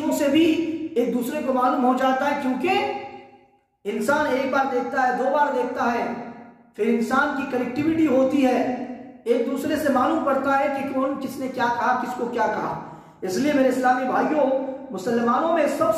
سے بھی ایک دوسرے کو معلوم ہو جاتا ہے، کیونکہ انسان ایک بار دیکھتا ہے، 2 بار دیکھتا ہے، پھر انسان کی کنیکٹیویٹی ہوتی ہے، ایک دوسرے سے معلوم پڑتا ہے کہ کون کس نے کیا کہا، کس کو کیا کہا. اس لیے میرے اسلامی بھائیوں، مسلمانوں میں سب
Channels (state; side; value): identical; both; correlation 1.00